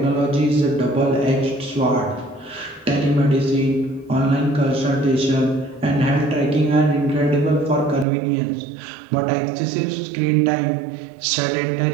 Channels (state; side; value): drops out; left; at 8.1 s